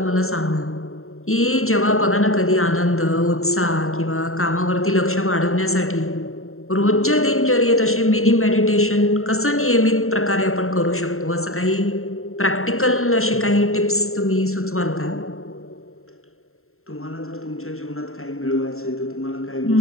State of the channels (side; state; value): right; late; 0.62 ms